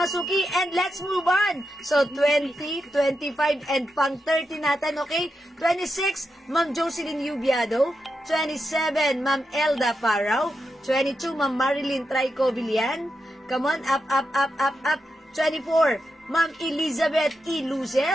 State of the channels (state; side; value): normal; both; correlation 0.87